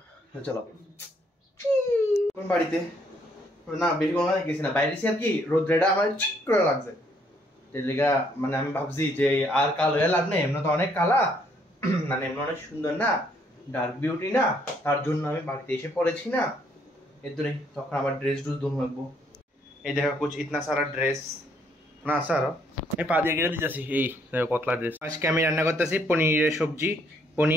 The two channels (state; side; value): normal; both; correlation 0.68